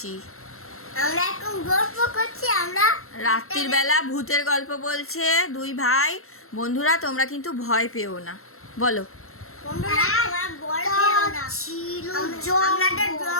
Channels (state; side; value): late; right; 0.62 ms